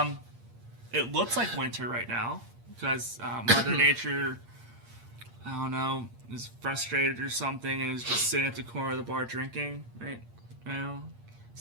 It looks like winter right now because Mother Nature, I don't know, is frustrated or something and is just sitting at the corner of the bar drinking, right? You know,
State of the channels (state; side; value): late; left; 8.6 ms